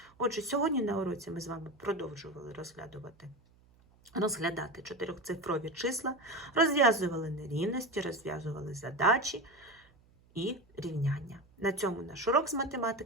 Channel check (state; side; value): noise; right; hum, 30 dB below the sound